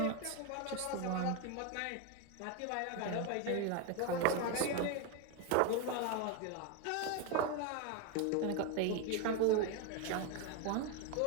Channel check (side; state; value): both; different; correlation 0.02